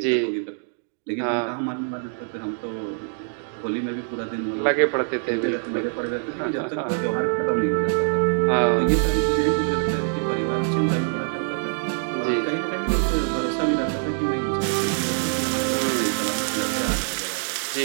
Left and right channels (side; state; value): left; silent; digital silence